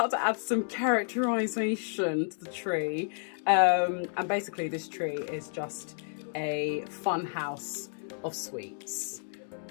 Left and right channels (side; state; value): right; silent; 57 dB below the other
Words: to add some characterization to the tree, and basically this tree is just a fun house of sweets,